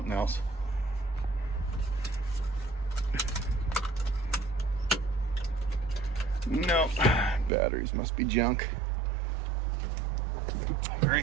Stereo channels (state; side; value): drops out; left; at 7.5 s